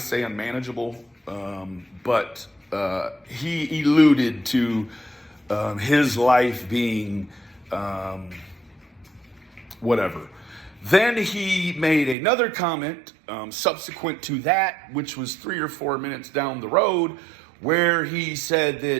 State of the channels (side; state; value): left; drops out; at 12.2 s